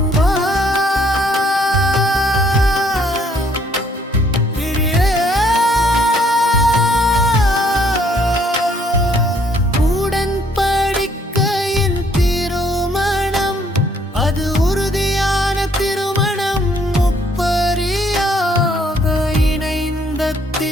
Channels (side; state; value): both; normal; correlation 0.65